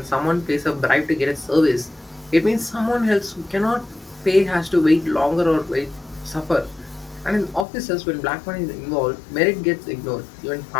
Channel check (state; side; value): drops out; right; at 7.7 s